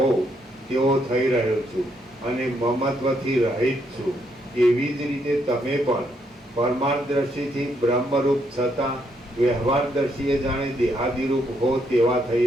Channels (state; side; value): normal; both; correlation 0.75